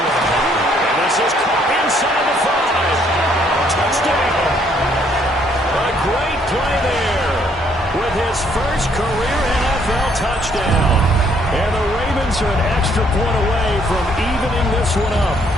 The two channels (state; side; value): normal; both; correlation 0.67